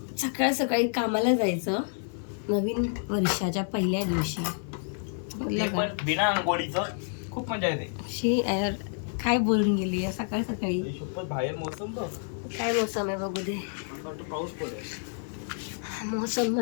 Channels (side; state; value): right; silent; 59 dB below the other